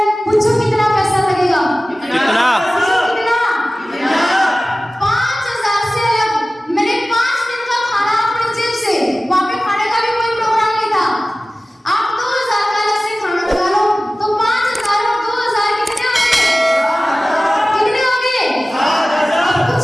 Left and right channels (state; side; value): normal; both; correlation 0.97